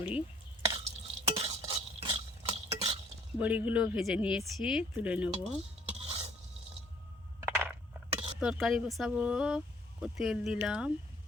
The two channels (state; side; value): normal; both; correlation 0.60